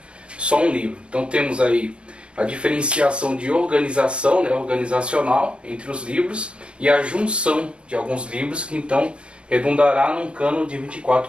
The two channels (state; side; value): late; left; 0.057 ms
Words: só um livro. Então temos aí a diferenciação de organização, né, organizacional entre os livros, e a junção de alguns livros que então redundará num cânon de